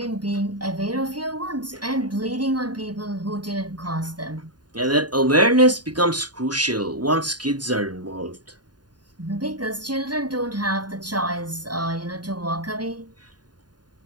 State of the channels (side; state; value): left; late; 0.70 ms